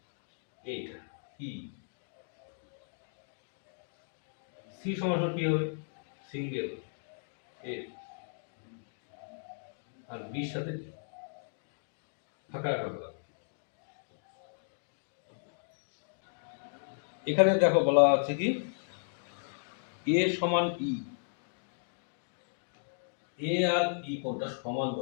এইটা ই। সি সমান কি হবে? সিঙ্গেল এ আর বির সাথে ফাঁকা রাখা হলো। এখানে দেখো বলা আছে কি এ সমান ই, এ আর ই কোণটা সমান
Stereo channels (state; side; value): silent; right; digital silence